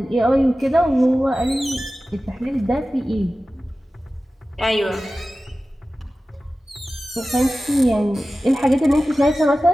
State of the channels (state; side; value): normal; both; correlation 0.95